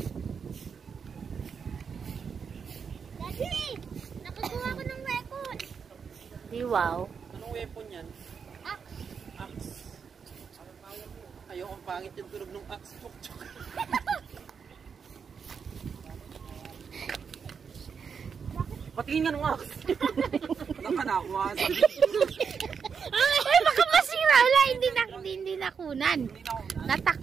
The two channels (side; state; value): left; quieter; 6.3 dB